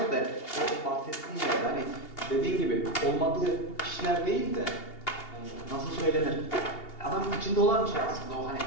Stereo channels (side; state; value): right; late; 2.8 ms